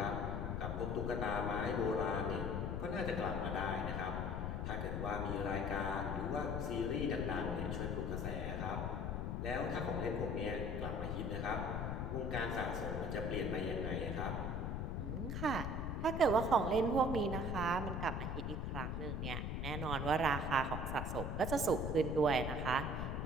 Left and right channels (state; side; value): noise; left; rumble, 1 dB below the sound